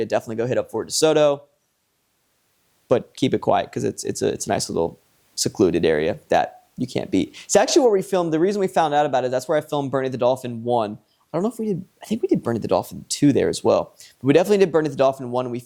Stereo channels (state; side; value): identical; both; correlation 1.00